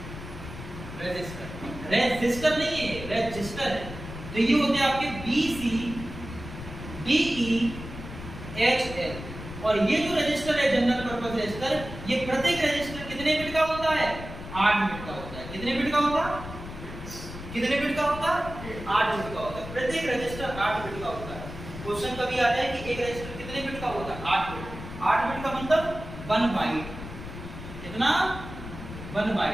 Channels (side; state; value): left; noise; rumble, 11 dB below the sound